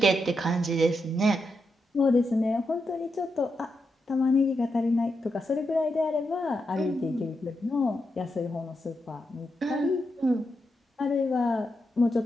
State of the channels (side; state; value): both; normal; correlation 0.85